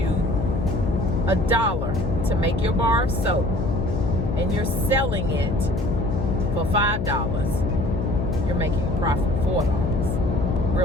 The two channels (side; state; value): left; noise; hum, 2 dB below the sound